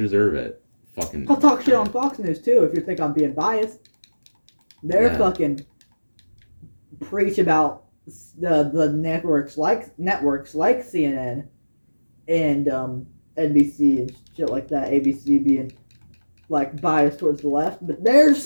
it. Fucking. I'll talk shit on Fox News too if you think I'm being biased. They're Yeah. fucking preach about the networks like CNN and NBC and shit like that. ABC being like biased towards the left, but they're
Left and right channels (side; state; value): both; inverted; correlation -1.00